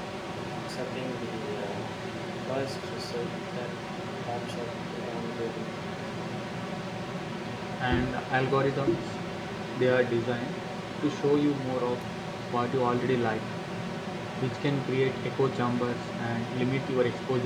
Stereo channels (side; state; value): both; identical; correlation 1.00